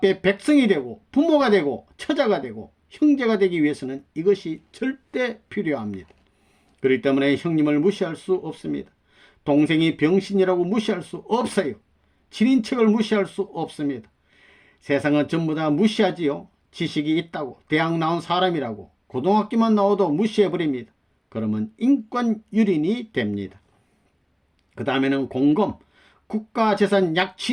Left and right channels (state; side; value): identical; both; correlation 1.00